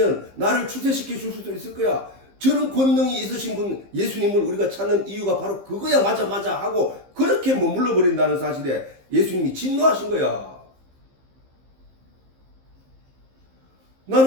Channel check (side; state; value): left; late; 15 ms